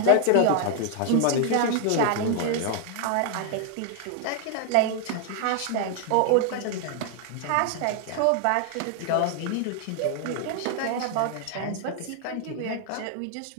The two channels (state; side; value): different; both; correlation 0.00